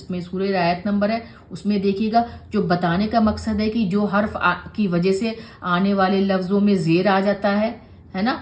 सूरह आयत नंबर है उसमें देखिएगा। जो बताने का मकसद है कि जो हर्फ की वजह से आने वाले लफ्ज़ों में ज़ेर आ जाता है ना,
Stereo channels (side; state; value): both; identical; correlation 1.00